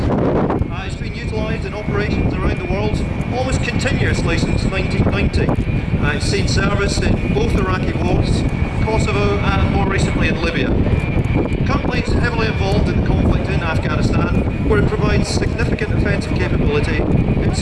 It's been utilised in operations around the world almost continuously since 1990. It's seen service in both Iraqi wars, Kosovo and more recently in Libya. Currently it's heavily involved in the conflict in Afghanistan, where it provides significant offensive capability in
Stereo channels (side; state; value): both; identical; correlation 1.00